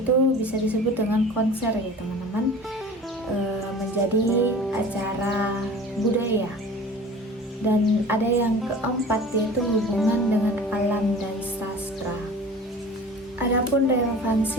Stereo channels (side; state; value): both; normal; correlation 0.41